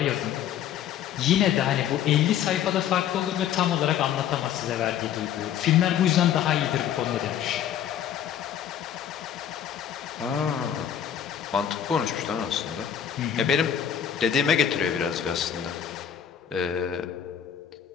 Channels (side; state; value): right; quieter; 9.5 dB